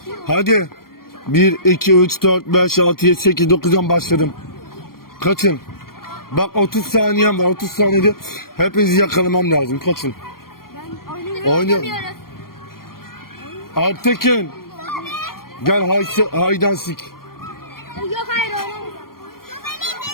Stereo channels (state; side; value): late; right; 0.93 ms